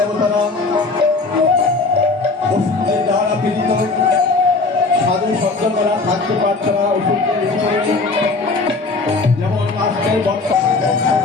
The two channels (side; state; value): right; quieter; 3.8 dB